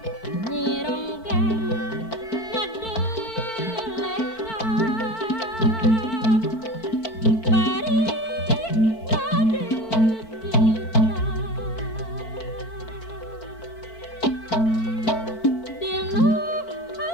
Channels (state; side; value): late; right; 4.5 ms